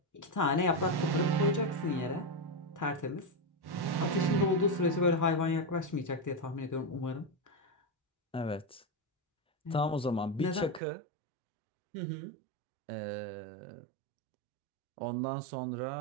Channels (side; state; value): left; drops out; at 10.8 s